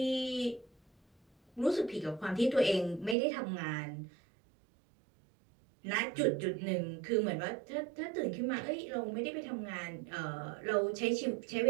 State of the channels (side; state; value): left; drops out; at 3.2 s